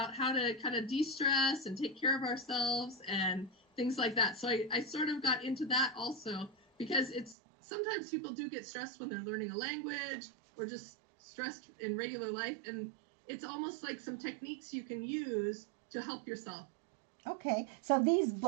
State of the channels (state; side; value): drops out; left; at 7.4 s